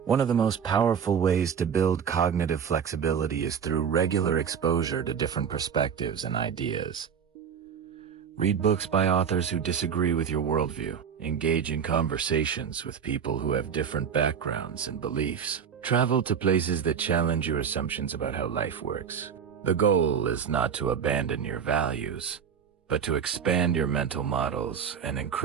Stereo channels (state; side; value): quieter; left; 7.4 dB